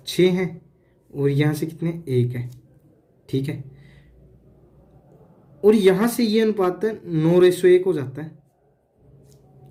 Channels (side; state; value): both; identical; correlation 1.00